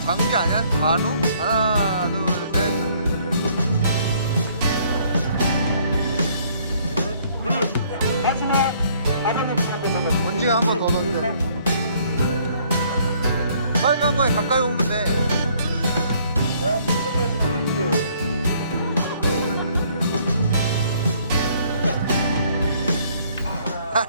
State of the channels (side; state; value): both; inverted; correlation -0.63